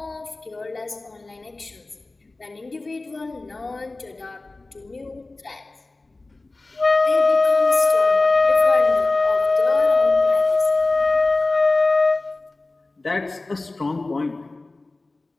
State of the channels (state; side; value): quieter; right; 3.2 dB